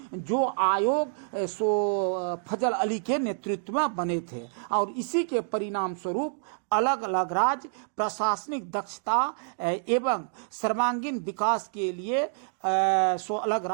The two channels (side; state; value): left; silent; digital silence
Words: जो आयोग फजल अली के नेतृत्व में बने थे, और इसी के परिणाम स्वरूप अलग अलग राज्य प्रशासनिक दक्षता एवं सर्वांगीण विकास के लिए अलग